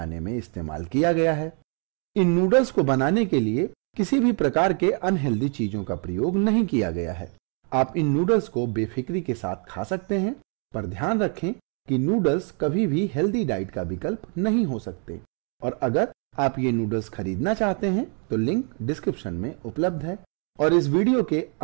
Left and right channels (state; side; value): quieter; left; 38.9 dB